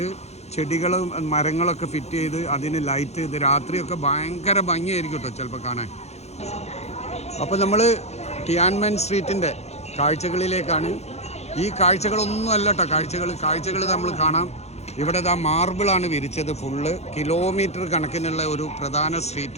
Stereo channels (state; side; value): late; right; 0.31 ms